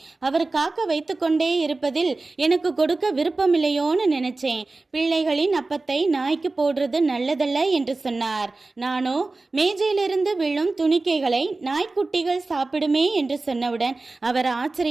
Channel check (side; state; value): left; quieter; 3.4 dB